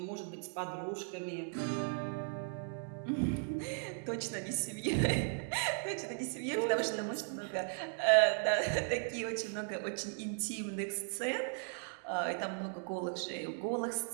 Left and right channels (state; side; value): silent; left; 53 dB below the other